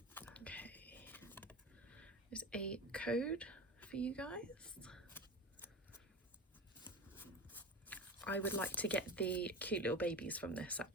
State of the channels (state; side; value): normal; both; correlation 0.29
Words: Okay, there's a code for you guys. I would like to get the cute little babies from this